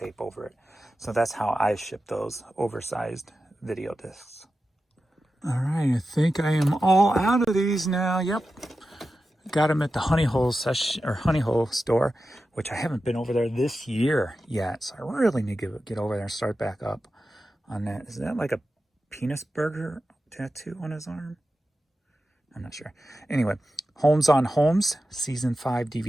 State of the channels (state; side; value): normal; both; correlation 0.92